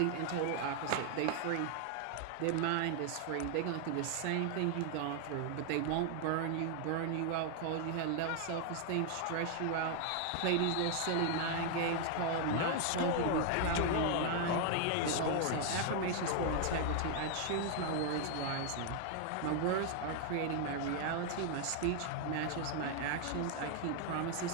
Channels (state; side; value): different; both; correlation 0.00